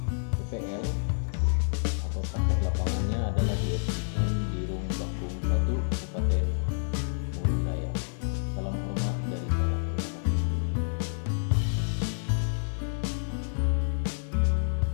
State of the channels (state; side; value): silent; right; 59 dB below the other